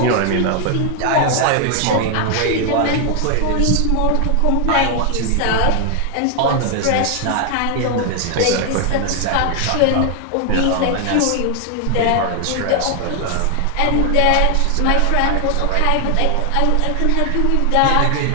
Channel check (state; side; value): different; both; correlation 0.00